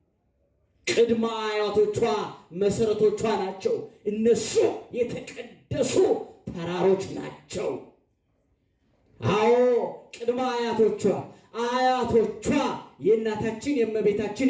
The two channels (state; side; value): identical; both; correlation 1.00